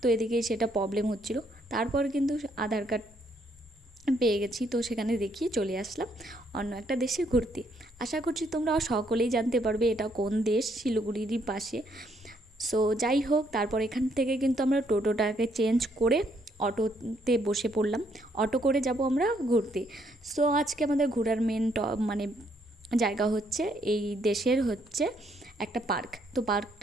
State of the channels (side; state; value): both; normal; correlation 0.71